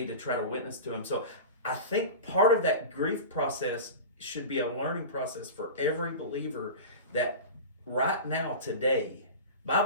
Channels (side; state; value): both; inverted; correlation -0.30